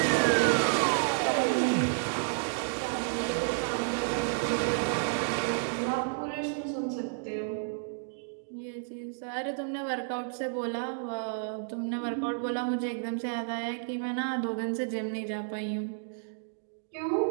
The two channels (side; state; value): left; silent; digital silence